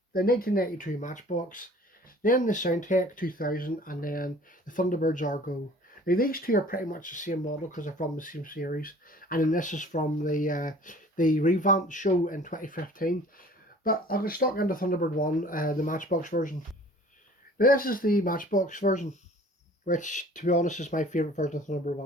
the 1992 Matchbox, then the Soundtech 2000, and then the Thunderbirds Go. Now these two are pretty much the same model because they're from the same series, and then this is from the revamped show in 2015. But I'll get stuck into Thunderbird 1, the Matchbox version. Now this is the Matchbox version, which to be honest is my favourite version of Thunderbird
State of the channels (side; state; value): both; normal; correlation 0.49